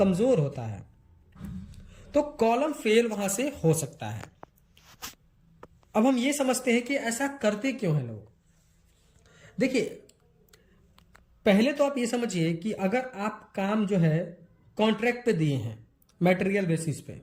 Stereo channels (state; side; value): identical; both; correlation 1.00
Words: होता है, तो कॉलम फेल वहां से हो सकता है। अब हम ये समझते हैं कि ऐसा करते क्यों हैं लोग। देखिए, पहले तो आप ये समझिए कि अगर आप काम जो है कॉन्ट्रैक्ट पे दिए हैं मटेरियल बेसिस पे,